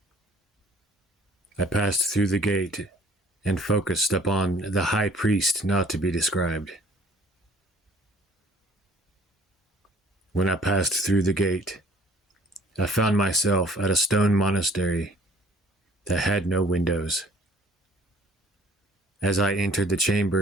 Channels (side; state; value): both; normal; correlation 0.55